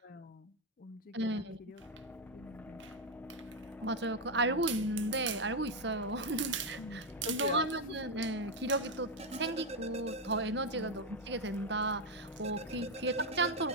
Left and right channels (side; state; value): both; normal; correlation 0.04